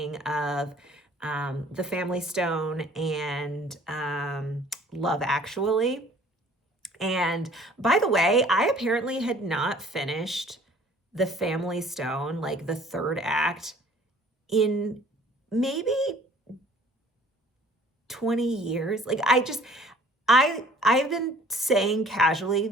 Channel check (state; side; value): normal; both; correlation 0.53